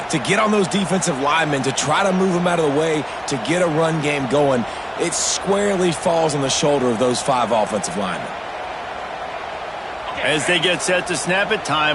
To get on those defensive linemen, to try to move them out of the way, to get a run game going, it squarely falls on the shoulder of those 5 offensive linemen. As they get set to snap it,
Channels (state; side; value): identical; both; correlation 1.00